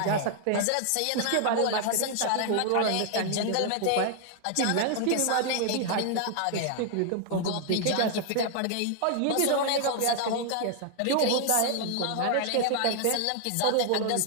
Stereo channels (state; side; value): different; both; correlation 0.00